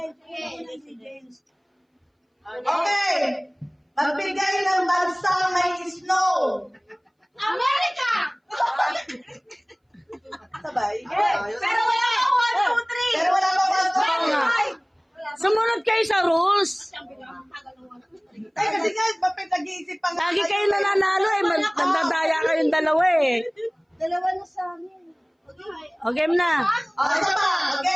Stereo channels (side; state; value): both; identical; correlation 1.00